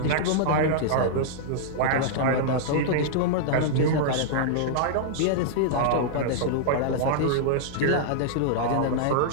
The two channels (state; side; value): different; both; correlation -0.02